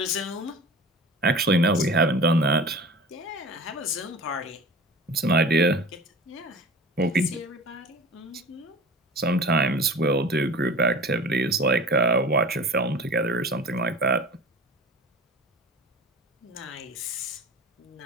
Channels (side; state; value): both; normal; correlation 0.38